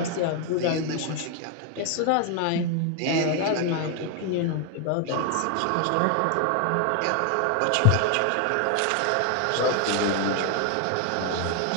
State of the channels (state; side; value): different; both; correlation 0.01